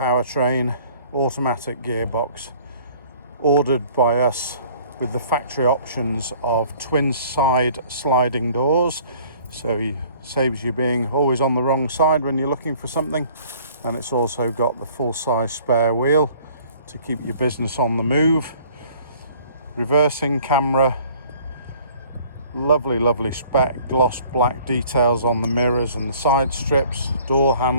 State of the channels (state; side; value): inverted; both; correlation -0.54